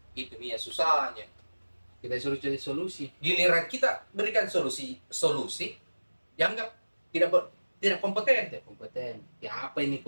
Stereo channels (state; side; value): inverted; both; correlation -1.00